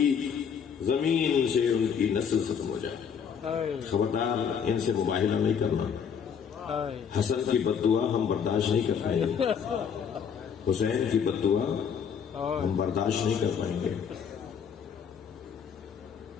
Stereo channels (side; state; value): right; quieter; 7.2 dB